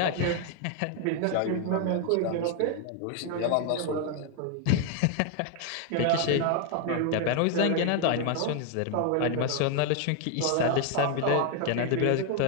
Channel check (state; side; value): different; both; correlation 0.00